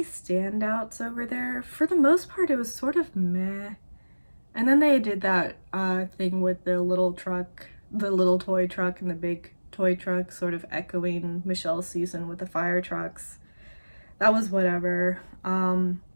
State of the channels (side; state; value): both; inverted; correlation -1.00